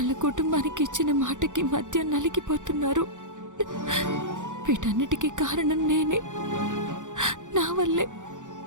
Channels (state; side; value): late; left; 0.86 ms